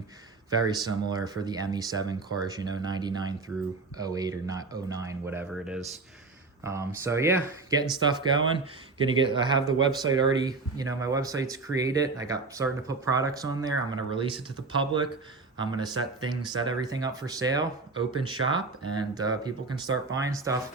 very similar for the ME7 cars, you know, 99 through 08 or not 09, whatever it is. So yeah, getting stuff going. I have the website already, you know, my website's created. I got starting to put products on there. I'm going to release it to the public. I'm going to set everything up for sale, open shop, and people can start buying stuff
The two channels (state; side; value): quieter; left; 3.9 dB